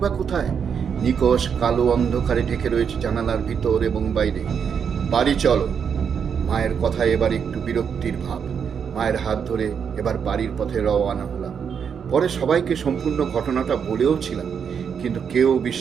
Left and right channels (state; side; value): quieter; left; 7.1 dB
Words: কোথায়? নিকষ কালো অন্ধকারে ঢেকে রয়েছে জানালার ভিতর এবং বাইরে। বাড়ি চলো। মায়ের কথায় এবার একটু বিরক্তির ভাব। মায়ের হাত ধরে এবার বাড়ির পথে রওনা হলাম। পরে সবাইকে সম্পূর্ণ ঘটনাটা বলেও ছিলাম, কিন্তু কেউ